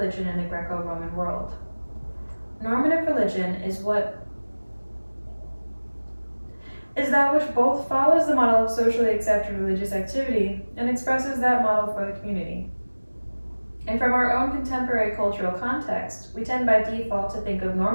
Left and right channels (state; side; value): inverted; both; correlation -1.00